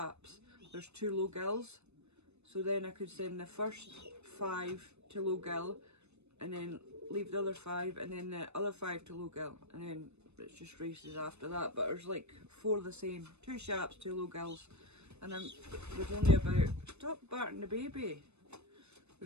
there's 2 low gills. So then I could send the first 5 to low gill, and then leave the other 5, and then the other 5 to low gill, and then it's just races after that. But there's like 4 the same, 2 sharps, 2 low gills, And there's only about, stop barking the baby.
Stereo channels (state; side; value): late; left; 0.81 ms